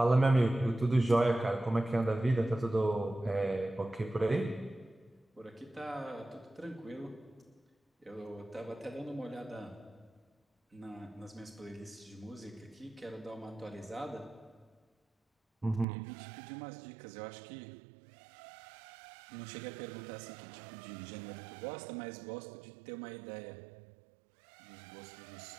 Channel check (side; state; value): left; drops out; at 15.9 s